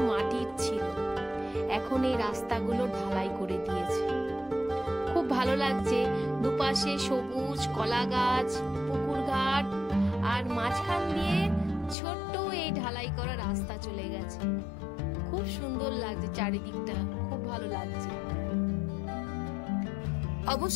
মাটির ছিল, এখন এই রাস্তাগুলো ঢালাই করে দিয়েছে। খুব ভালো লাগছে, দুপাশে সবুজ, কলা গাছ, পুকুর ঘাট, আর মাঝখান দিয়ে ছোট্ট এই ঢালাই করা রাস্তা চলে গেছে। খুব সুন্দর লাগছে চারিদিকটা, খুব ভালো লাগছে।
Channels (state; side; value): drops out; right; at 12.0 s